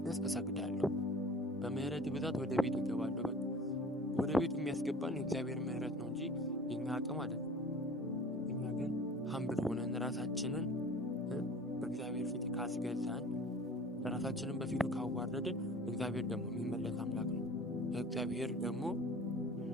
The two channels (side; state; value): both; normal; correlation 0.43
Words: እሰግዳለሁ። በምህረት ብዛት ወደ ቤት እገባለሁ። ወደ ቤቱ የሚያስገባን የእግዚአብሔር ምህረት ነው እንጂ የኛ አቅም አይደለም። እኛ ግን ሀምብል ሆነን ራሳችንን በእግዚአብሔር ፊት ካስገዛን፣ ራሳችንን በፊቱ ካዋረድን እግዚአብሔር ደግሞ የሚመለስ አምላክ ነው። እግዚአብሔር